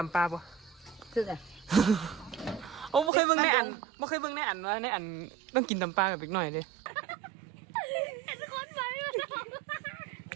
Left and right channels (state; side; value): drops out; left; at 3.1 s